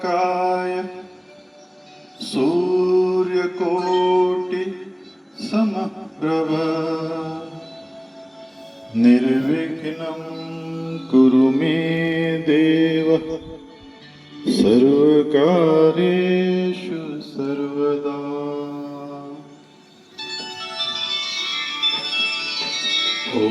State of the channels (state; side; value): identical; both; correlation 1.00